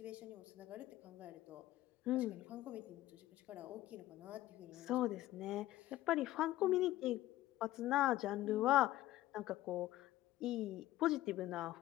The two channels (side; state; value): right; quieter; 15.5 dB